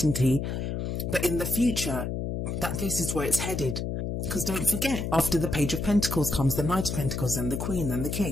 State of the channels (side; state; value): left; noise; hum, 3 dB below the sound